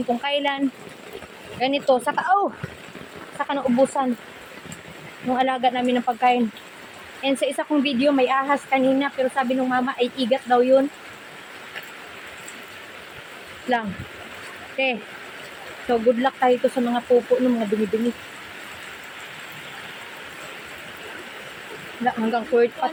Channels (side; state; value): both; identical; correlation 1.00